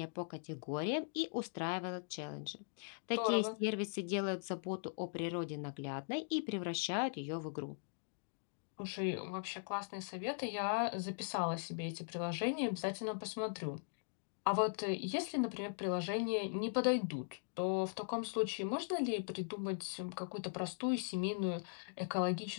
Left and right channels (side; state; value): right; silent; digital silence